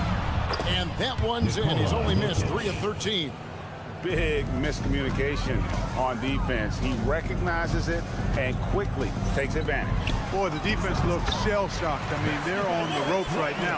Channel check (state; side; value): identical; both; correlation 1.00